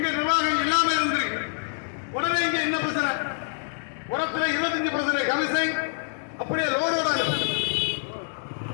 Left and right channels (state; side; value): silent; right; digital silence